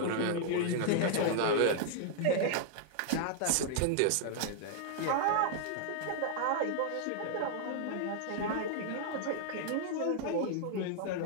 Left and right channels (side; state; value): both; different; correlation -0.01